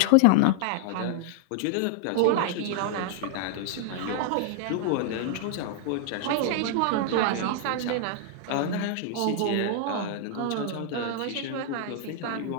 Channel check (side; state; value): both; different; correlation -0.01